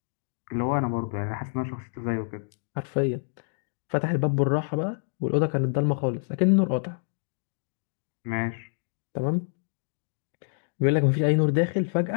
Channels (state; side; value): silent; right; digital silence